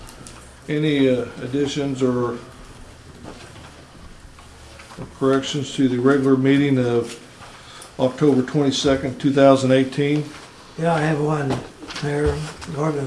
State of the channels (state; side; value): identical; both; correlation 1.00